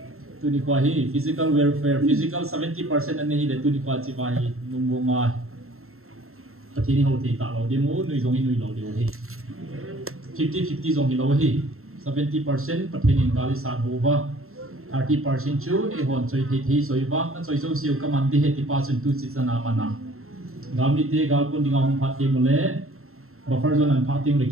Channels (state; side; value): late; left; 0.62 ms